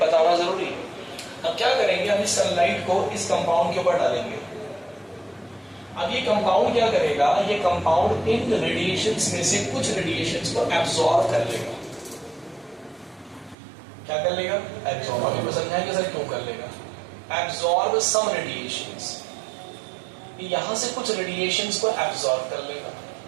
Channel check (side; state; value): left; drops out; at 13.6 s